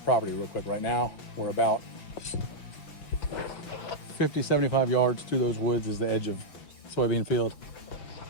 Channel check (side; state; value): right; late; 5.9 ms